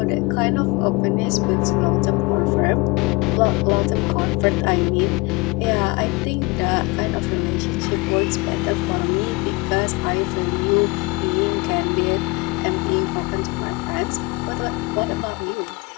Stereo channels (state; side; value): quieter; right; 26.6 dB